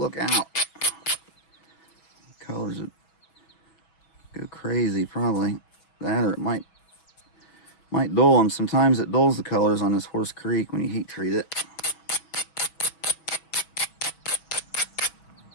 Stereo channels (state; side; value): late; right; 6.2 ms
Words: out. Colors would go crazy, probably. That, or it might dull them. Sometimes it dulls the colors on this Horse Creek when you heat treat it.